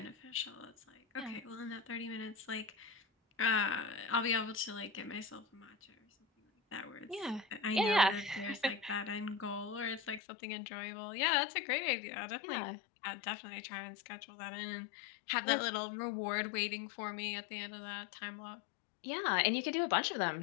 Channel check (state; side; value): drops out; right; at 10.2 s